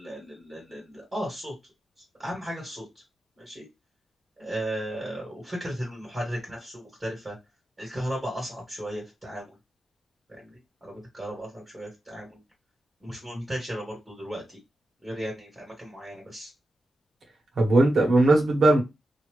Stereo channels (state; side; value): normal; both; correlation 0.90